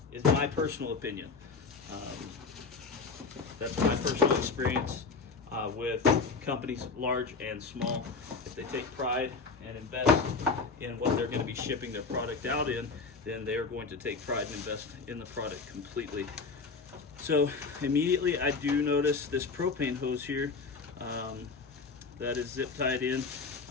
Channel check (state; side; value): quieter; right; 4.5 dB